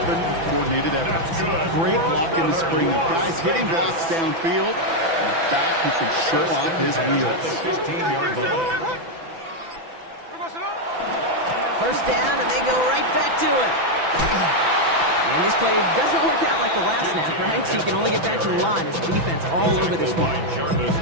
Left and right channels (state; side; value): late; left; 6.0 ms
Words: with coordinated efforts. Great block in the spring of guys hitting blocks downfield, and a back who can shove off his wheels. 15-yard line. 1st down, and they go right back to it. And this play doesn't work out like the last snap, right? So you can only get back to the line as the defense all over this one.